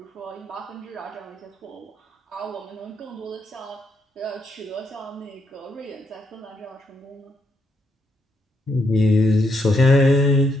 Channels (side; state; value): both; normal; correlation 0.77